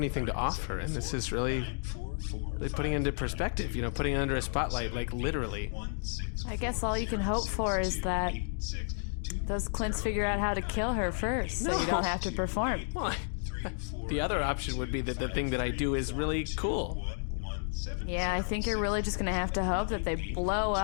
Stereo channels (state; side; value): silent; right; 57 dB below the other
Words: to offer, and this is really putting it into perspective, putting it under a spotlight, like literally. I guess all you can hope for is that those C.L.I.N.Ts figure out how to kill her first, so you don't have to perform. Well, the other option would be that the thing that I do is really cool. Yeah, I think you're really just gonna have to hope that they blow